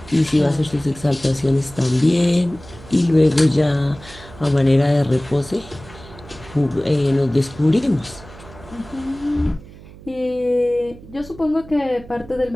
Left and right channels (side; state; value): right; noise; hum, 19 dB below the sound